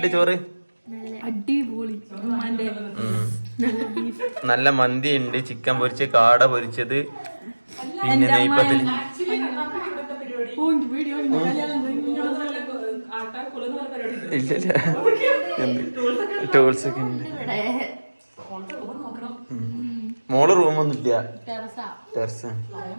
ചോറ്? അടിപൊളി. നല്ല മന്തി ഉണ്ട്, ചിക്കൻ പൊരിച്ച്, കാട പൊരിച്ചത്, പിന്നെ നെയ്പ്പത്തിൽ ഇല്ല ടൂൾസ് ഒക്കെ ഉണ്ട്. മോള് റൂമൊന്നും ഇല്ല, ടെറസ്.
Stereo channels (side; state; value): both; inverted; correlation -1.00